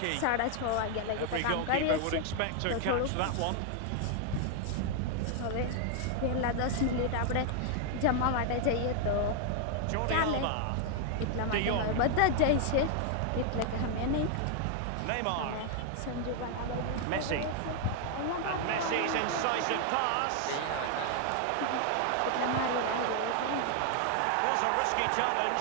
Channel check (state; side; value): different; both; correlation 0.00